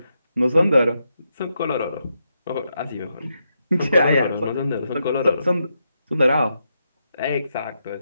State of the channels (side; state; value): both; inverted; correlation -0.83